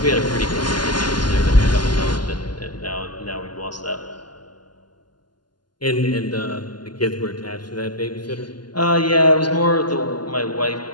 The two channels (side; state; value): right; late; 0.71 ms